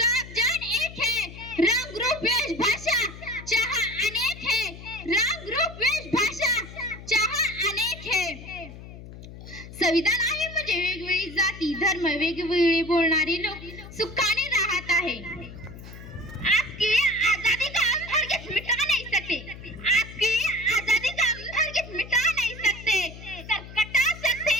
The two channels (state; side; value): noise; left; hum, 15 dB below the sound